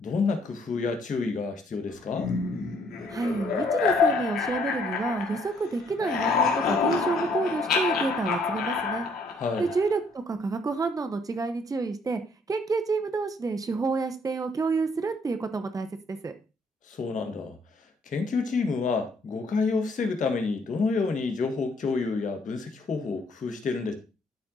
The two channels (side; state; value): both; normal; correlation 0.66